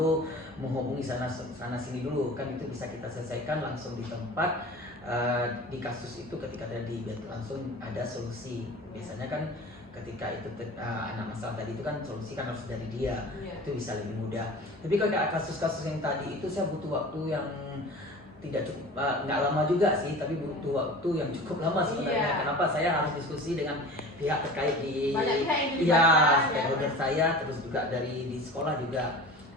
menghubungi sana sini dulu, kan itu bisa kita selesaikan langsung di tempat. Di kasus itu ketika terjadi langsung ada solusi. Biasanya kan ketika itu anak masalah tadi itu kan solusi kan harus dari dia, itu bisa lebih mudah. Tapi kalau kasus-kasus yang tadi itu saya butuh waktu yang tidak cukup, nggak lama juga sih, tapi butuh waktu yang cukup lama sebenarnya. Kenapa? Saya harus diskusi dengan pihak terkait di stakeholder saya, terus juga di sekolah juga.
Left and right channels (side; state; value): both; normal; correlation 0.38